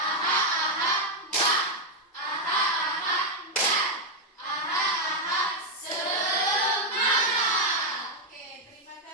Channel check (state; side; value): normal; both; correlation 0.02